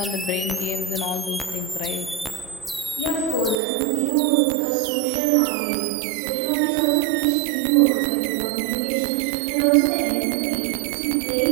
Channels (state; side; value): drops out; left; at 3.6 s